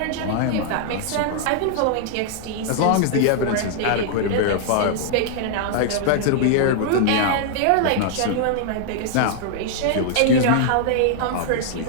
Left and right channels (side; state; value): both; different; correlation -0.01